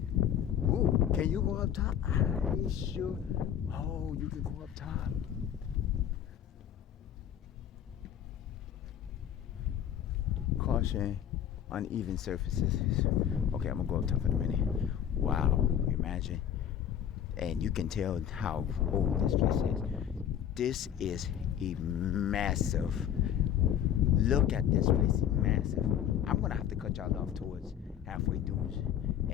can you go up top? Are you sure? Oh, you can go up top. Caution, uneven surfaces. Okay, I'm gonna go up top in a minute. Wow, imagine. And you can tell how old this place is. This is a massive. Look at this place, massive. I'm gonna have to cut y'all off towards halfway through,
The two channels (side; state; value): right; quieter; 9.7 dB